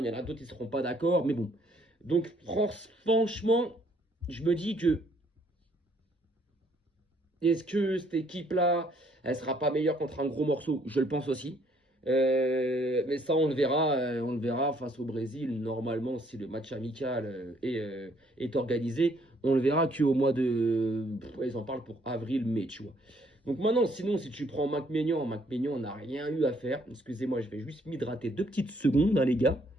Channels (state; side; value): normal; both; correlation 0.66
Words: y en a d'autres qui ne seront pas d'accord, mais bon. Donc, franchement, je me dis que est-ce que cette équipe-là, elle sera pas meilleure contre un gros morceau? Je le pense aussi. Mais ça, on le verra face au Brésil. Normalement, si le match amical est organisé, on le verra qu'au mois de. Ils en parlent pour avril-mai, tu vois. Donc maintenant, sinon, si tu prends Mac Maignan n'a rien eu à faire. Excusez-moi, je vais juste m'hydrater 2 petites secondes, hein, les gars.